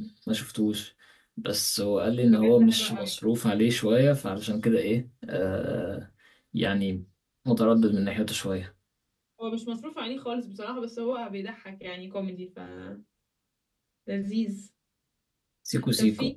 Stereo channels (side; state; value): both; identical; correlation 1.00